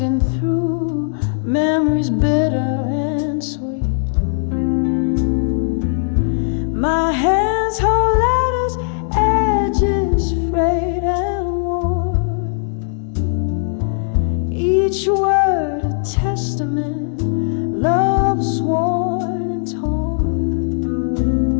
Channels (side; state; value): right; silent; digital silence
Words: through memories bitter and sweet. My hands hold letters, edges frayed and worn. Each word a testament, love sworn and torn.